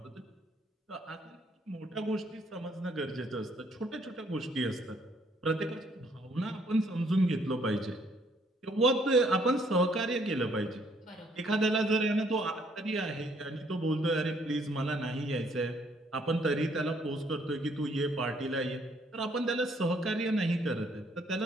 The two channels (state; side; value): normal; both; correlation 0.66